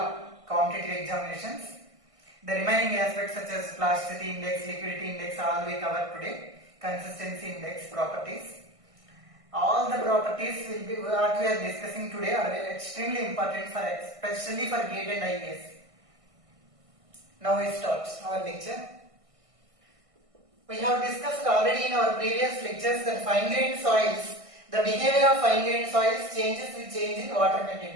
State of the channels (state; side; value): late; left; 1.6 ms